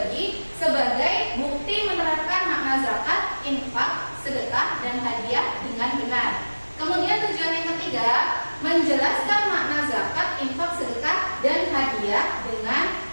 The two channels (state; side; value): inverted; both; correlation -1.00